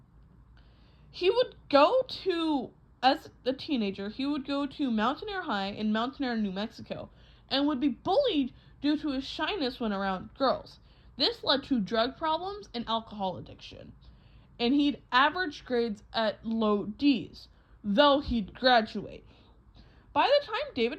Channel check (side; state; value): both; identical; correlation 1.00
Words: As a teenager, he would go to Mountaineer High in Mountaineer, New Mexico, and would be bullied due to his shyness when around girls. This led to drug problems and alcohol addiction, and he'd average grades at low D's, though he'd graduate. By the time